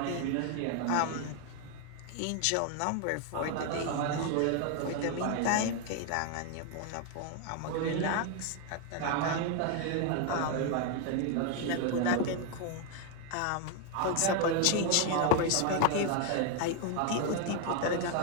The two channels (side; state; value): both; different; correlation 0.01